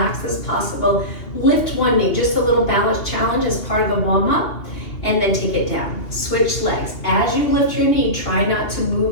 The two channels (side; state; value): right; late; 2.8 ms